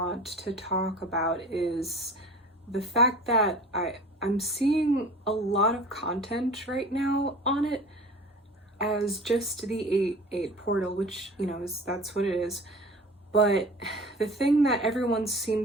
to talk about is the fact that I'm seeing a lot of content right now on it as just the 8/8 portal, which, that's what it is. But the thing that everyone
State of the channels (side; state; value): both; normal; correlation 0.40